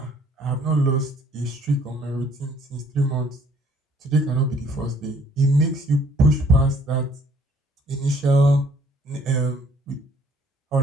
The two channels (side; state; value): both; normal; correlation 0.60